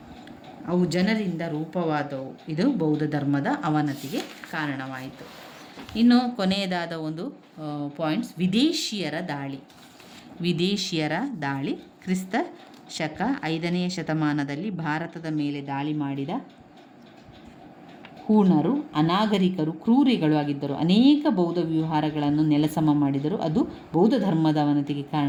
ಅವು ಜನರಿಂದ ರೂಪವಾದವು. ಇದು ಬೌದ್ಧ ಧರ್ಮದ ಅವನತಿಗೆ ಕಾರಣವಾಯಿತು. ಇನ್ನು ಕೊನೆಯದಾದ ಒಂದು ಪಾಯಿಂಟ್ಸ್, ವಿದೇಶಿಯರ ದಾಳಿ. ವಿದೇಶಿಯರ ದಾಳಿ ಕ್ರಿಸ್ತ ಶಕ 5ನೇ ಶತಮಾನದಲ್ಲಿ ಭಾರತದ ಮೇಲೆ ದಾಳಿ ಮಾಡಿದ ಹೂಣರು ಅನಾಗರಿಕರು, ಕ್ರೂರಿಗಳು ಆಗಿದ್ದರು. ಅನೇಕ ಬೌದ್ಧ ವಿಹಾರಗಳನ್ನು ನೆಲಸಮ ಮಾಡಿದರು. ಅದು ಬೌದ್ಧ ಧರ್ಮದ ಅವನತಿಗೆ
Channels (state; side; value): identical; both; correlation 1.00